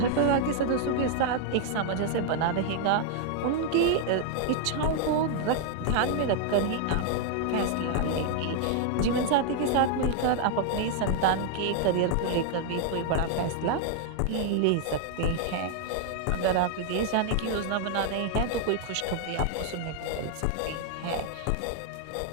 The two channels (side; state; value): both; different; correlation 0.00